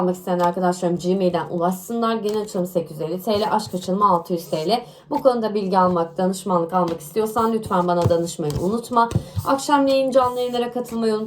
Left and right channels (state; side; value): identical; both; correlation 1.00